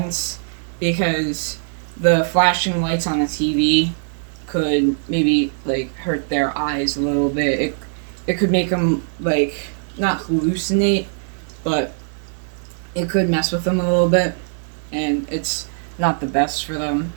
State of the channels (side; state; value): left; silent; digital silence